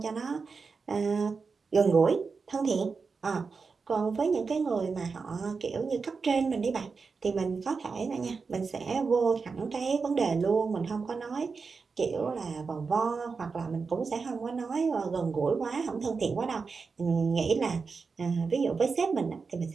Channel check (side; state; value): left; quieter; 4.9 dB